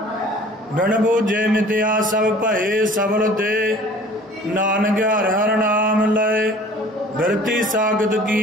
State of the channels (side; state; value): both; normal; correlation 0.48